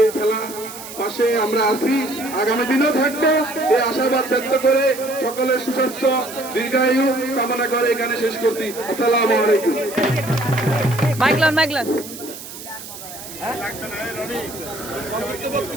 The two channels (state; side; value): noise; right; hiss, 13 dB below the sound